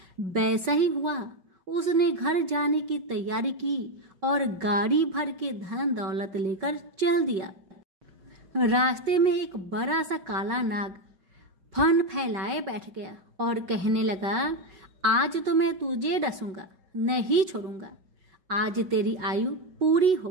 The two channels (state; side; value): late; left; 5.3 ms